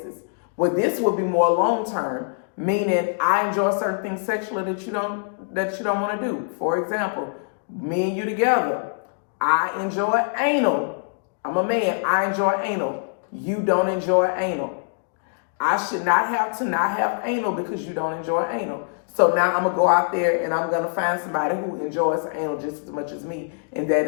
Well, this would be more long-term, meaning I enjoy certain things sexually that you don't want to do. For example, me and you together, I enjoy anal. I'm a man, I enjoy anal. You don't enjoy anal. I should not have to not have anal because you don't enjoy anal. So now I'm going to go out there and I'm going to find somebody who enjoys anal just as much as me, and that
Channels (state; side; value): silent; right; 63 dB below the other